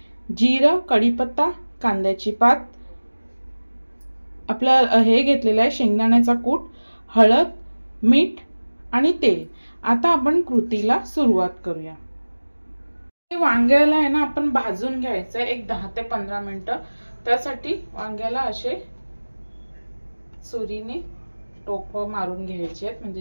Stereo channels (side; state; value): both; inverted; correlation -1.00